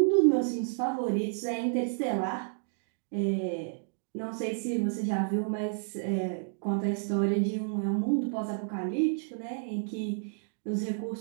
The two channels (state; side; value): silent; left; digital silence